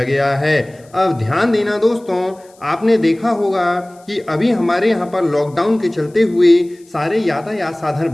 गया है। अब ध्यान देना दोस्तों, आपने देखा होगा कि अभी हमारे यहाँ पर लॉकडाउन के चलते हुए सारे यातायात साधन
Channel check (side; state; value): left; noise; hiss, 30 dB below the sound